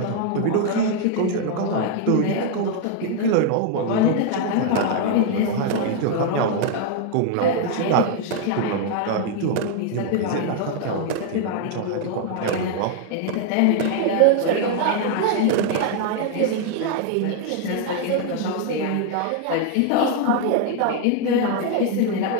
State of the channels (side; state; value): both; different; correlation 0.00